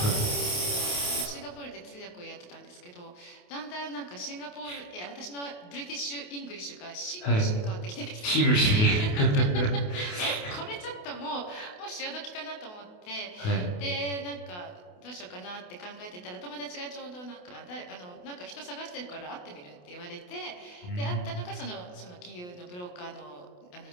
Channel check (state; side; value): late; right; 28 ms